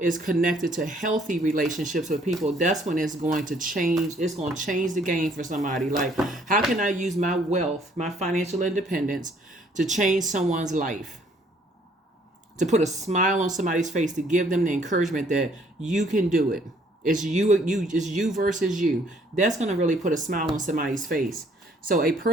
is connected to healthy relationships with people, that's when it's going to change. It's going to change the game for somebody. Like, how can I use my wealth, my financial independence to change someone's life? To put a smile on somebody's face, to give them the encouragement that you can do it. It's you versus you. That's going to really put a smile on somebody's face. So a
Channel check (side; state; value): both; normal; correlation 0.63